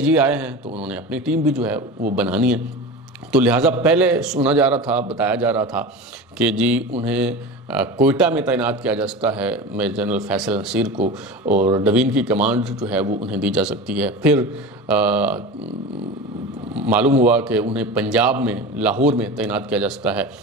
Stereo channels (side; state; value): both; normal; correlation 0.30